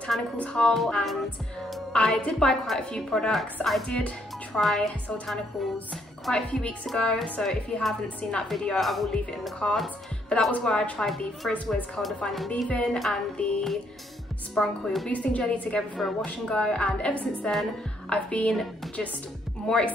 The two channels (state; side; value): normal; both; correlation 0.70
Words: haul, and I did buy quite a few products. I did try Soultanicals quite a few weeks ago, so if you haven't seen that video I will leave it in the cards, but that was where I tried the Frizz Curl Defining Leave-In and the Sprung Coil Boosting Jelly together for a wash and go, and ever since then I've been just more